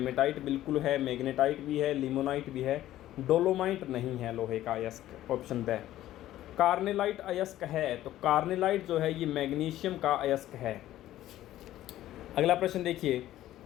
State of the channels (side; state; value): right; quieter; 13.9 dB